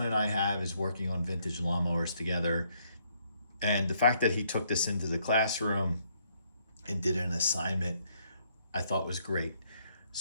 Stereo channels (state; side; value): inverted; both; correlation -0.71